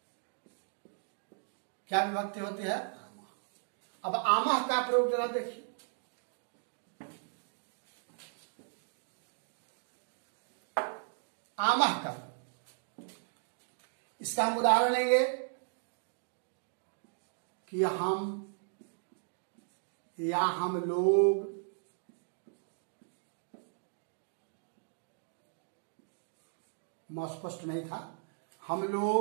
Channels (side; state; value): left; silent; digital silence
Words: क्या विभक्ति होती है? आमः। अब आमः का प्रयोग जरा देखिए। आमः का, इसका हम उदाहरण लेंगे कि हम या हम लोग, स्पष्ट नहीं था, हम